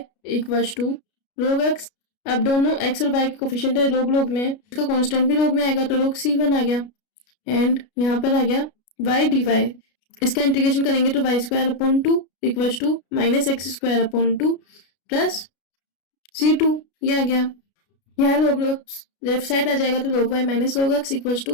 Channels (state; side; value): late; right; 33 ms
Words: equals to log x. अब दोनों एक्स और वाई के कोफिशिएंट है log log में, इसका कांस्टेंट भी log में आएगा तो log c1 आ गया, एंड यहाँ पर आ गया वाई डी वाई। इसका इंटीग्रेशन करेंगे तो y square upon two equals to minus x square upon two plus c2, ये आ गया। यहाँ log लेफ्ट साइड आ जाएगा तो log y minus log x equals